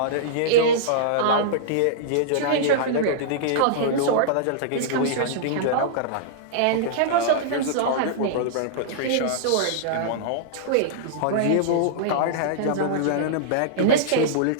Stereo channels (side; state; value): both; different; correlation -0.02